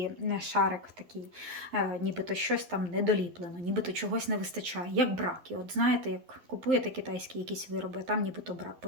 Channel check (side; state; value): left; late; 11 ms